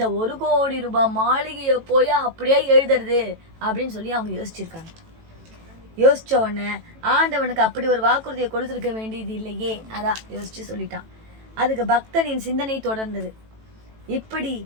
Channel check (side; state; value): left; late; 18 ms